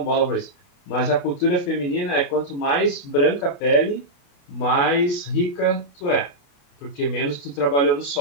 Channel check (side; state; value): right; late; 28 ms